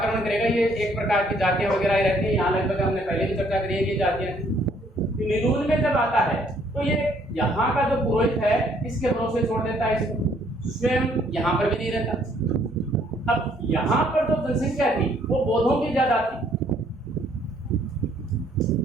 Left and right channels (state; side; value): normal; both; correlation 0.65